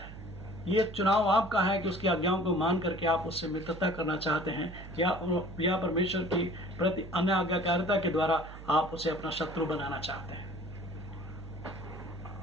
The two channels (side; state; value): right; noise; hum, 13 dB below the sound